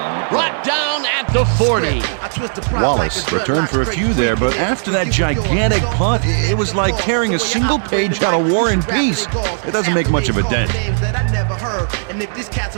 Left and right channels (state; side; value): silent; left; digital silence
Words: Brought down at the 40. Wallace returned for a few there, but after that gigantic punt, it was like carrying a single page out of War and Peace. It doesn't make much of a dent.